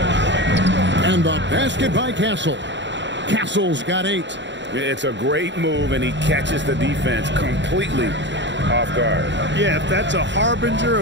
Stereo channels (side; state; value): left; late; 0.53 ms